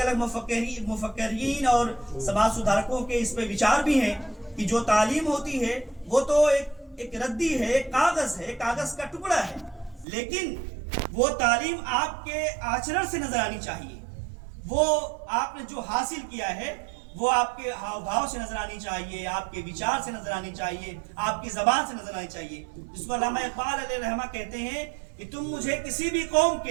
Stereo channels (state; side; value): drops out; left; at 10.1 s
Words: مفکرین اور سماج سدھارکوں کے اس پہ وچار بھی ہیں کہ جو تعلیم ہوتی ہے وہ تو ایک ردی ہے، ایک کاغذ ہے، کاغذ کا ٹکڑا ہے، لیکن وہ تعلیم آپ کے آچرن سے نظر آنی چاہیے. وہ آپ نے جو حاصل کیا ہے وہ آپ کے ہاؤ بھاؤ سے نظر آنی چاہیے، آپ کے وچار سے نظر آنی چاہیے، آپ کی زبان سے نظر آنی چاہیے. جس کو علامہ اقبال علیہ رحمہ کہتے ہیں کہ تم مجھے کسی بھی قوم